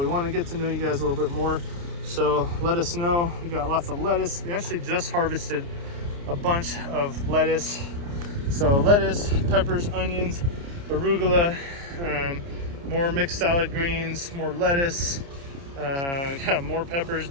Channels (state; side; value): late; left; 29 ms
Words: want to get to know you guys a little bit more. So let us know. We got lots of lettuce. We actually just harvested a bunch of lettuce. So lettuce, peppers, onions, arugula, more mixed salad greens, more lettuce. Got more peppers